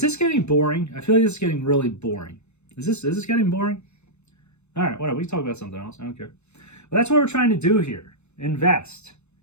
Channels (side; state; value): right; late; 0.81 ms